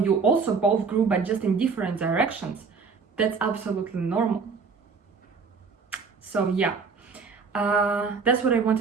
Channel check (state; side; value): quieter; left; 5.1 dB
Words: also both grew but just in different directions, that's absolutely normal. So yeah, that's what I